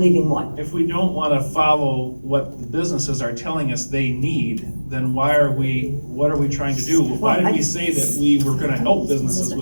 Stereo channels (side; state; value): both; inverted; correlation -1.00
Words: what? If we don't wanna follow what the businesses are telling us they need, then what are we trying to do? Why did we say that we were gonna help businesses